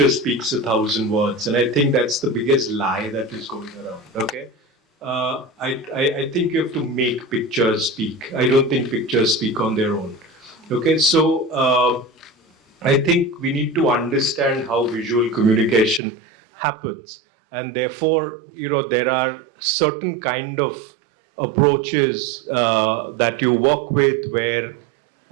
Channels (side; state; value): left; drops out; at 16.0 s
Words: speaks 1,000 words. And I think that's the biggest lie that is going around, okay? I think you have to make pictures speak. I don't think pictures speak on their own, okay? So, I think we need to understand how visual communication happens, and therefore, there are certain kind of approaches that you work with where